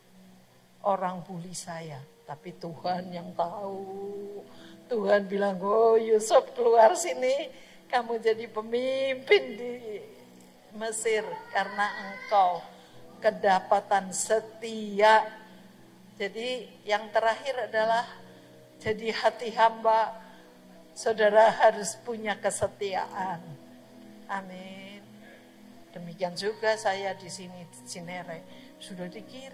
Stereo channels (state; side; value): identical; both; correlation 1.00